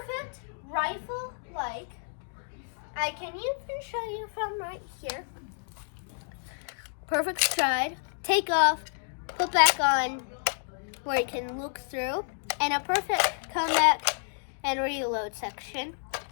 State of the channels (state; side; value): silent; right; digital silence